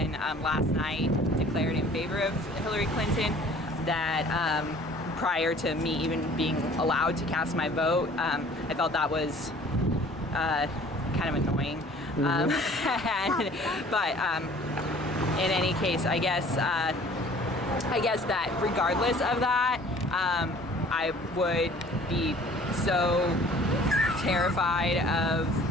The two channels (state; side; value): normal; both; correlation 0.51